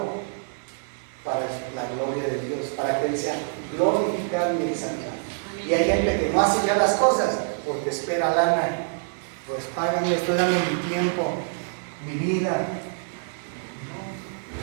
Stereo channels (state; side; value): silent; left; digital silence